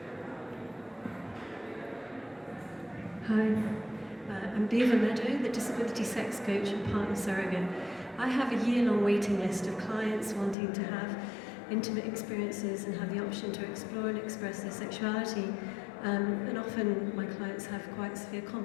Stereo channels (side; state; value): right; drops out; at 10.6 s